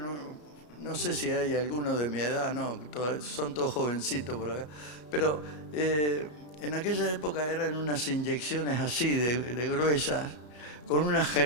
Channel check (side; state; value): right; late; 33 ms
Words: no sé si hay alguno de mi edad, no, son todos jovencitos por acá, pero en aquella época eran unas inyecciones así de gruesas, con unas